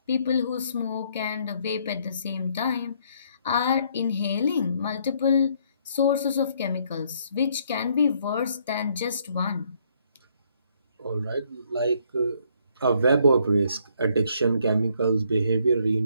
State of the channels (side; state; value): both; inverted; correlation -0.68